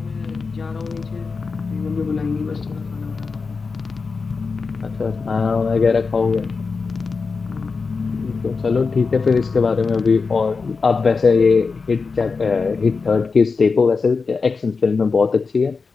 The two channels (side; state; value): right; quieter; 4.7 dB